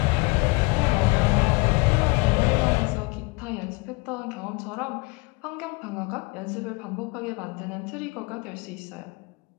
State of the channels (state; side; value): quieter; right; 27.0 dB